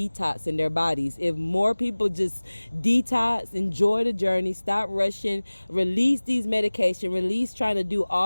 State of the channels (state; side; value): inverted; both; correlation -1.00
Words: their bodies. If more people just detox, enjoy the journey, stop rushing, release these medication, release trying to do